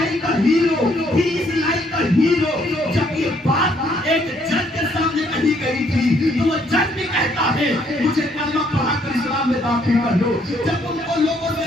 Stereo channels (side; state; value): both; normal; correlation 0.68